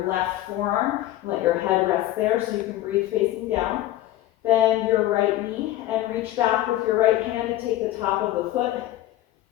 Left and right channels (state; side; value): quieter; right; 14.6 dB